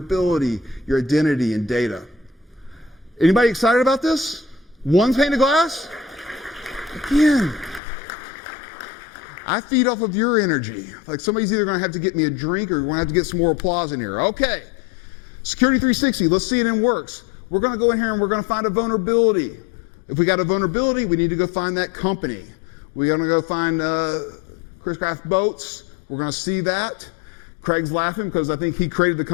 your identity, and data. Anybody excited about this? One pane of glass? Again. I feed off of your energy. Like somebody's either going to have to get me a drink or you're going to have to get some more applause in here. Okay. Security360, let's see it in works. We're going to go in here and we're going to find a vulnerability. If we got a vulnerability, we need to go find that company. We're going to go find Chris Craft Boats. We're going to see that. Craig's laughing because I think he created the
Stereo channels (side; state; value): right; drops out; at 7.8 s